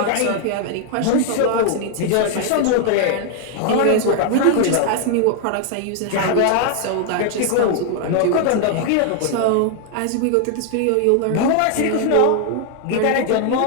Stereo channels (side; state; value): both; different; correlation 0.00